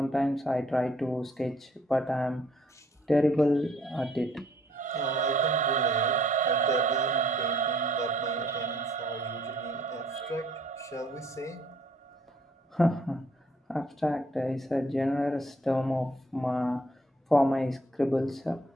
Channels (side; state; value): both; normal; correlation 0.63